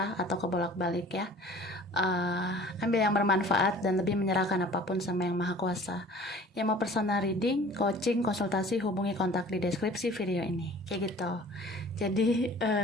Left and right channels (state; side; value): normal; both; correlation 0.47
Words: atau kebolak-balik ya. Ambil yang bermanfaat dan lebih menyerahkan apapun sama yang maha kuasa. Yang mau personal reading, coaching, konsultasi, hubungi kontak di deskripsi video ini. Kayak gitu. Jadi